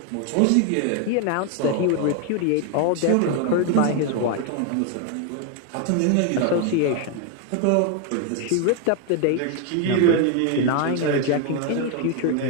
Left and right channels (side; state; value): both; different; correlation 0.01